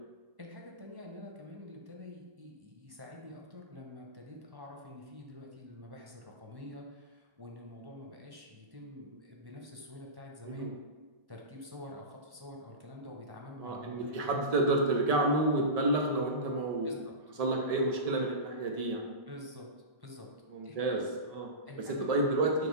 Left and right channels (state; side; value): late; left; 1.1 ms